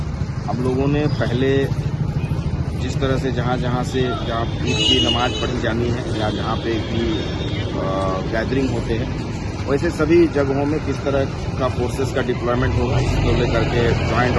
हम लोगों ने पहले जिस तरह से जहाँ ईद की नमाज पढ़ी जानी है या जहाँ पे भी गैदरिंग होते हैं, वैसे सभी जगहों में किस तरह का फोर्सेस का डिप्लॉयमेंट होगा, इसको लेकर के जॉइंट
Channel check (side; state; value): both; identical; correlation 1.00